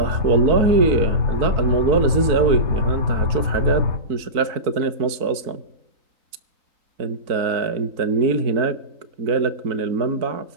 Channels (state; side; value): late; left; 3.9 ms